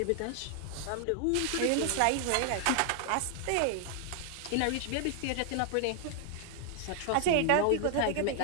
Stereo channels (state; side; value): different; both; correlation 0.00